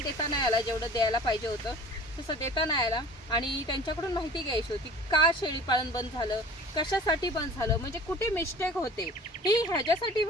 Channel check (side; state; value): both; normal; correlation 0.44